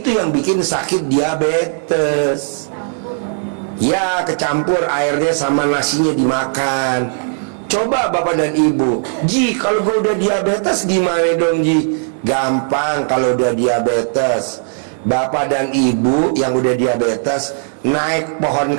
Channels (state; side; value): silent; left; digital silence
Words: yang bikin sakit diabetes. Ya kecampur airnya sama nasinya dimakan. Coba bapak dan ibu, Ji kalau gue udah diabetes gimana dong Ji? Gampang kalau udah diabetes. Bapak dan ibu yang udah diabetes naik pohon